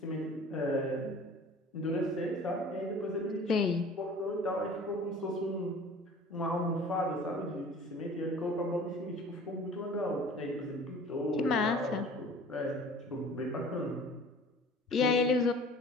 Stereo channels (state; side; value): normal; both; correlation 0.45